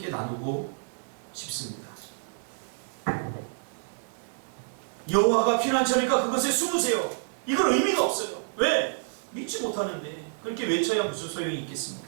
나누고 싶습니다. 여호와가 피난처니까 그것에 숨으세요. 이건 의미가 없어요. 왜? 믿지 못하는데 그렇게 외쳐야 무슨 소용이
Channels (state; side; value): silent; left; digital silence